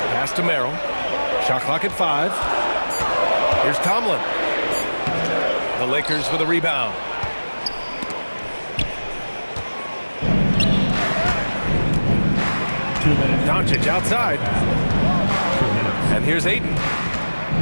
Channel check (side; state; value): both; inverted; correlation -1.00